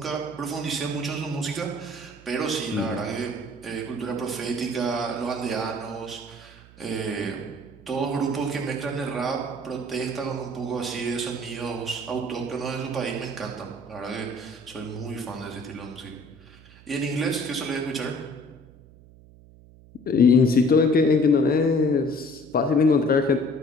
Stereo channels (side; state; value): right; noise; hum, 23 dB below the sound